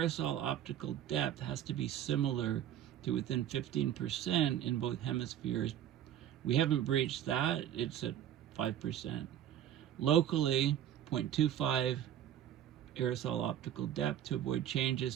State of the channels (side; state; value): left; quieter; 10.9 dB